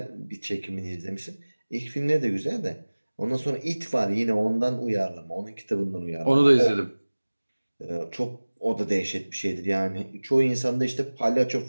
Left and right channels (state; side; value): inverted; both; correlation -1.00